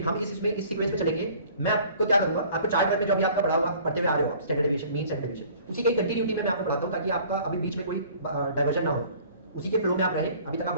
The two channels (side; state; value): both; inverted; correlation -0.51